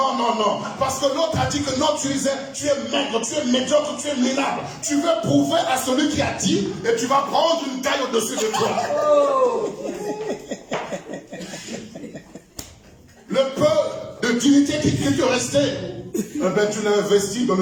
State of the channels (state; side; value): identical; both; correlation 1.00